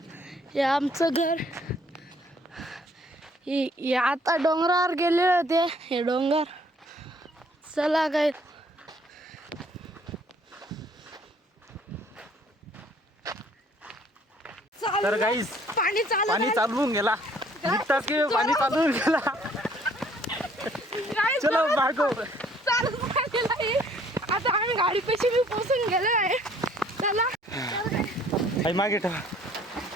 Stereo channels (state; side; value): normal; both; correlation 0.60